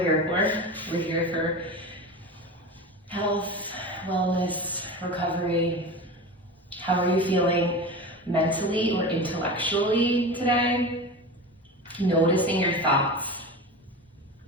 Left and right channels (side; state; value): both; normal; correlation 0.28